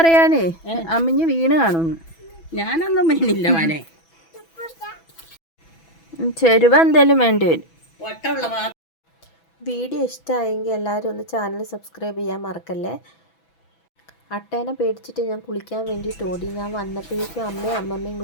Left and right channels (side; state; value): right; late; 6.1 ms